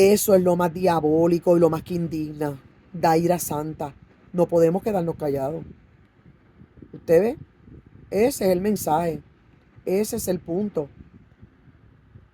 es lo más diabólico y lo más que indigna. Da ira santa. No podemos quedarnos callados. ¿Usted ve? Ese es el mensaje. Ese es el punto.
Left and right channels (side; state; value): both; identical; correlation 1.00